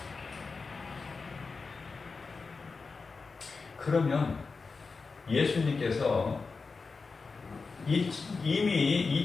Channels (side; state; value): right; quieter; 4.5 dB